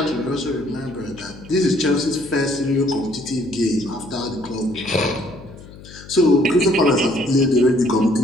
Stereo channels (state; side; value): noise; left; hum, 18 dB below the sound